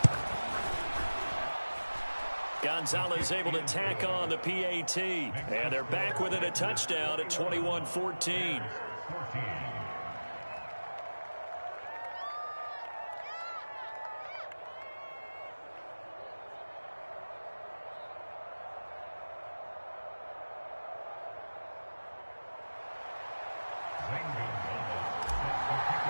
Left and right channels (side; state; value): both; inverted; correlation -1.00